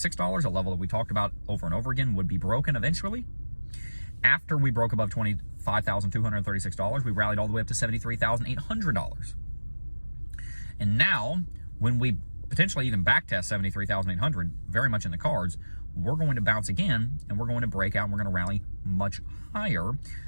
a level that we talked about over and over again would be broken eventually. After we broke above $25,236, we rallied all the way up to $73,800. And now, when we potentially even backtest $73,800, very much in the cards, we're going to bounce again, and we're going to break out, and we're going to rally much higher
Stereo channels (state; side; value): inverted; both; correlation -1.00